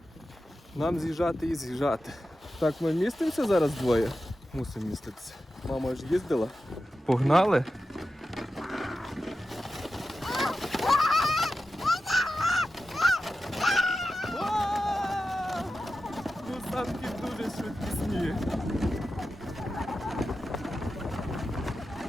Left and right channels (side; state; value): both; normal; correlation 0.92